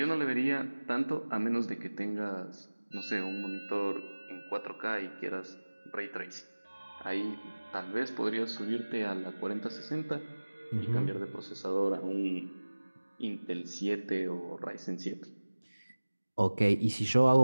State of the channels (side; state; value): both; inverted; correlation -1.00